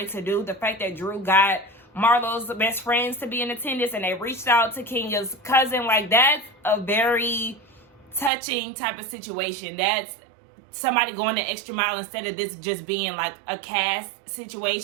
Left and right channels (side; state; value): left; drops out; at 8.3 s